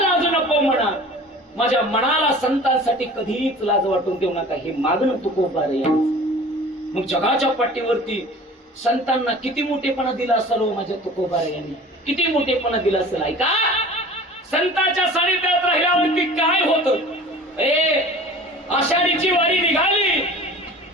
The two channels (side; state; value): both; normal; correlation 0.42